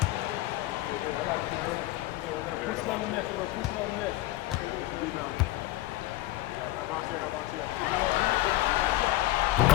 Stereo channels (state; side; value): quieter; right; 16.7 dB